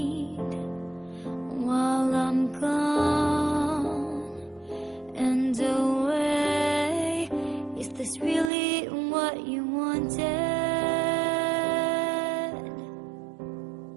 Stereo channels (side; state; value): left; drops out; at 8.5 s